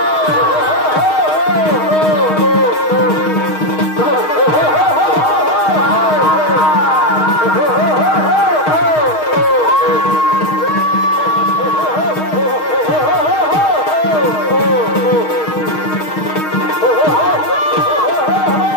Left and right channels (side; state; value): right; late; 6.4 ms